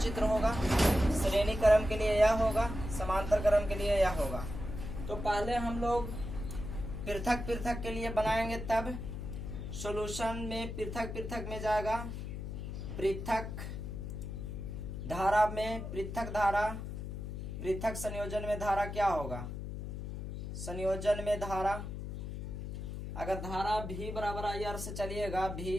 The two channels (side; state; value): left; noise; hum, 6 dB below the sound